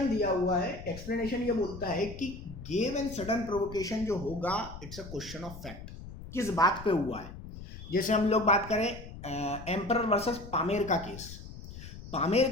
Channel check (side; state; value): left; noise; rumble, 13 dB below the sound